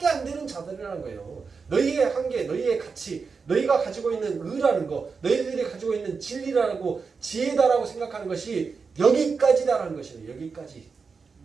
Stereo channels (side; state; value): left; quieter; 5.1 dB